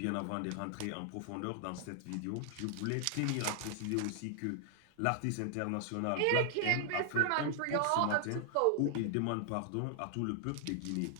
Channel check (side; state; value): both; different; correlation 0.00